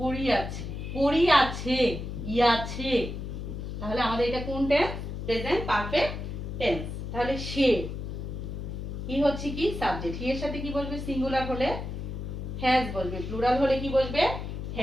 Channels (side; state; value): left; noise; hum, 6 dB below the sound